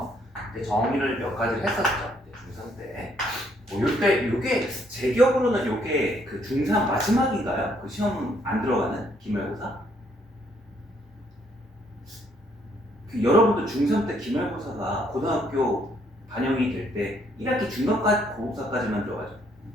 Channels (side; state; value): both; normal; correlation 0.69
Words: 이제 정의를 몇 가지를 했었죠. 이제 중3 때. 뭐 요때 요게 제 기억으로는 요게 그 중3 마지막인가요? 그 시험은 안 들어가는 기말고사? 그 여러분도 중3 때 기말고사가 고등학교 반영이 될 때 1학기 중간까지 고고사까지만 들어가죠.